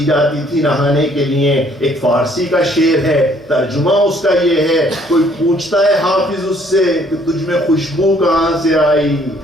جاتی تھی نہانے کے لیے، ایک فارسی کا شعر ہے، ترجمہ اس کا یہ ہے، کوئی پوچھتا ہے حافظ اس سے کہ تجھ میں خوشبو کہاں سے آئی،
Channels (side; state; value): right; noise; hum, 27 dB below the sound